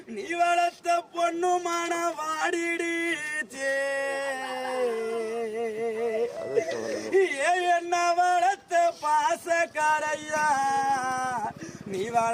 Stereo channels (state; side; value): identical; both; correlation 1.00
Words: நீ வளர்த்த பொண்ணு மான வாடிடுச்சே என்ன வளர்த்த பாசக்காரையா நீ